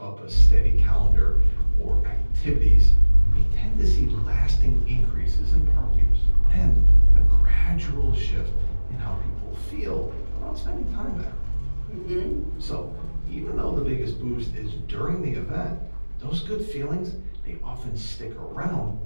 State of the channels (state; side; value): inverted; both; correlation -1.00